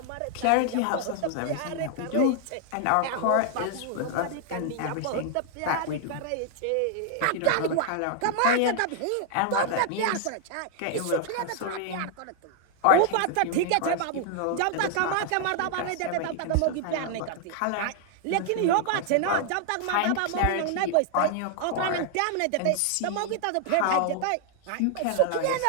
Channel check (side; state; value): both; different; correlation 0.00